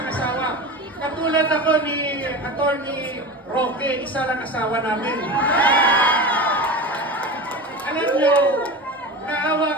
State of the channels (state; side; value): normal; both; correlation 0.28